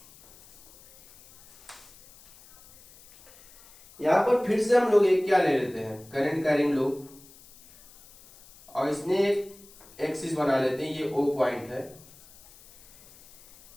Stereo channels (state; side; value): noise; left; hiss, 24 dB below the sound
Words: यहां पर फिर से हम लोग एक क्या ले लेते हैं, करंट कैरिंग लूप, और इसने एक एक्सिस बना लेते हैं, ये O पॉइंट है।